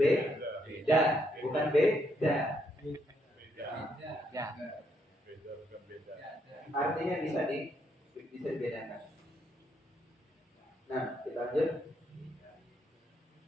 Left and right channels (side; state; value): both; normal; correlation 0.75